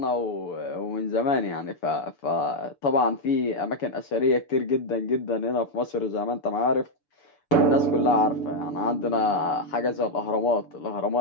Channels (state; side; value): late; right; 6.9 ms